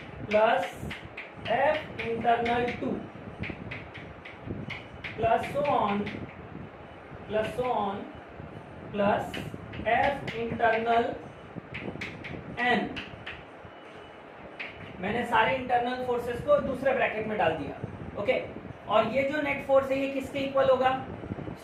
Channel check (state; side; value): identical; both; correlation 1.00